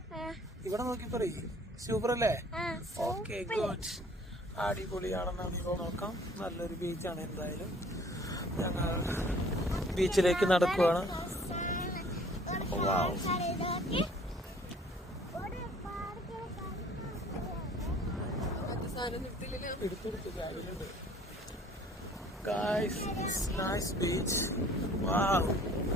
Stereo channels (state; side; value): normal; both; correlation 0.54